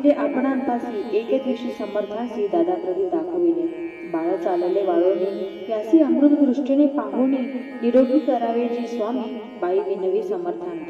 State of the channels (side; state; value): both; identical; correlation 1.00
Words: आपणांपासी, एक दिवशी समर्थासी दादा प्रती दाखविले। बाळ चालले वाळोनी, यासी अमृत दृष्टीने पाहुणी, निरोगी करावे जी स्वामी, बाई विनवी